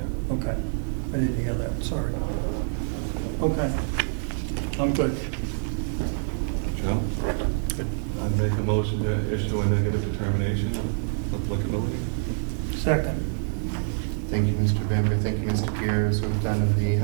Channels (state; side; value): silent; left; digital silence